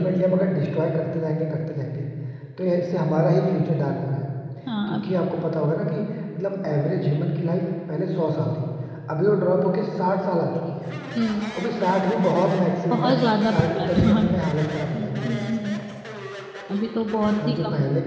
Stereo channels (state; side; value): identical; both; correlation 1.00